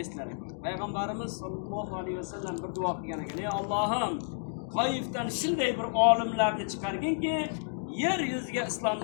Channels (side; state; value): right; silent; digital silence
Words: eslar ekan. Payg'ambarimiz sollallohu alayhi vasallam bir duo qilgan ekan. Ey Allohim, Toifdan shunday bir olimlarni chiqarginki, yer yuziga